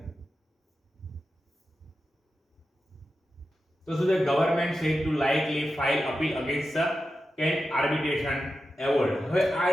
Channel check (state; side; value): normal; both; correlation 0.91